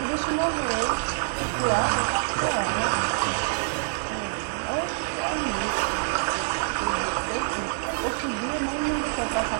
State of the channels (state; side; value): silent; left; digital silence